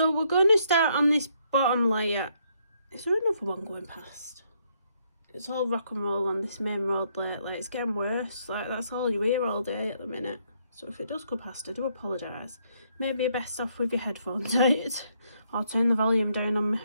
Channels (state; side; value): inverted; both; correlation -0.72